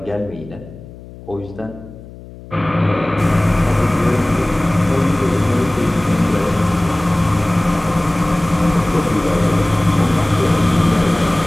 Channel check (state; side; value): noise; left; hum, 17 dB below the sound